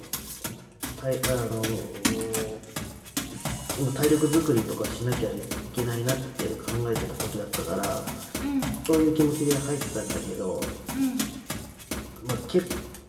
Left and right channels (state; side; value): identical; both; correlation 1.00